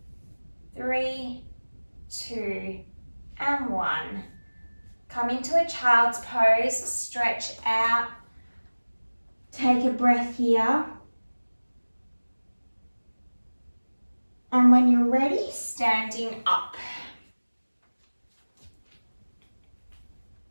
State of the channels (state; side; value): inverted; both; correlation -1.00